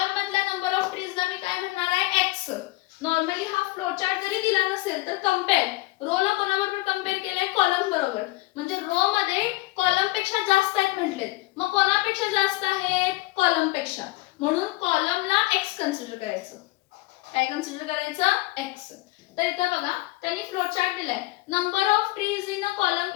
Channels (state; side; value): quieter; right; 20.0 dB